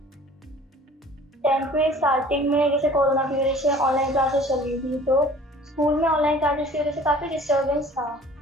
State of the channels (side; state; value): both; normal; correlation 0.49